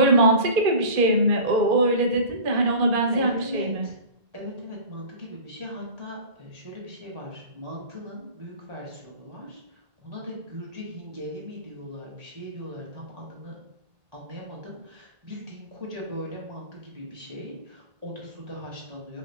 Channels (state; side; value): late; left; 1.8 ms